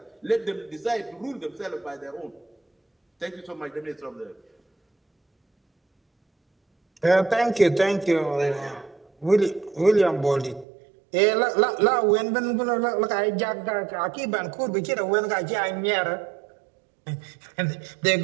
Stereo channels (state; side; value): drops out; left; at 10.7 s